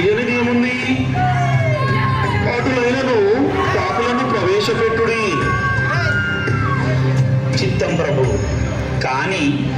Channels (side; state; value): both; identical; correlation 1.00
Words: ఏముంది? అటులైనను పాపులను ప్రవేశపెట్టుడి. చిత్తం ప్రభు. కానీ